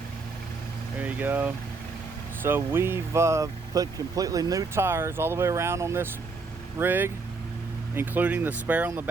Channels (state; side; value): quieter; left; 4.1 dB